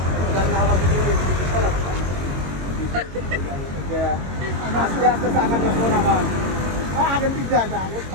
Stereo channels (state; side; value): late; left; 22 ms